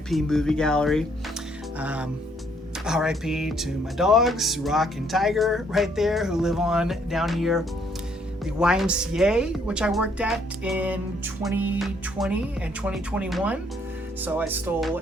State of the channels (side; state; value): both; normal; correlation 0.68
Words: movie gallery. RIP to my dogs, Rock and Tiger right there, who live on down here. The YMCA, which I worked at in 2020 and 2021. So I stole